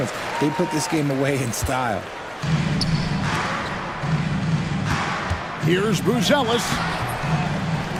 They put this game away in style. Here's Buzelis.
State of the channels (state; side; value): identical; both; correlation 1.00